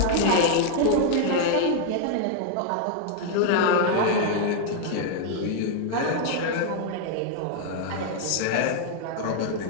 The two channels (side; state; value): both; different; correlation 0.00